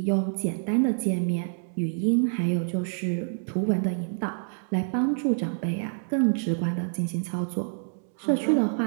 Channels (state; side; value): silent; left; digital silence